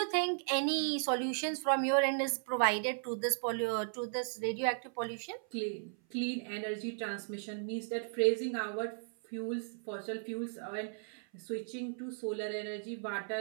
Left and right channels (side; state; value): left; silent; 54 dB below the other